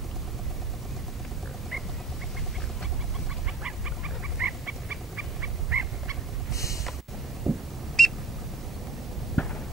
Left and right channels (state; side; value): quieter; left; 3.4 dB